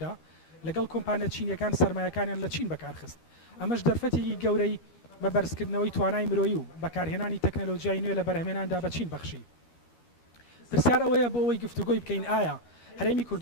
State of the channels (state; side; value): late; right; 13 ms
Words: لەگەڵ کۆمپانیا چینیەکان سەرمایەکانیان لە چین بەکارخست. ئەمەش دەرفەتێکی گەورەی بە بەرزکردنەوەی توانای مرۆیی و بەکارهێنانی تەکنەلۆژیای نوێ لە بەرهەمێناندا بە چین بەخشی. پرسیار ئەوەیە بۆ ئەوەی گفتوگۆی بکەین ئایا هەرێمی